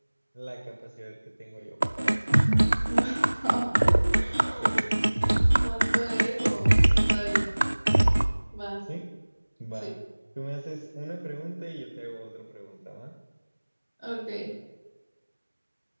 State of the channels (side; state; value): both; inverted; correlation -1.00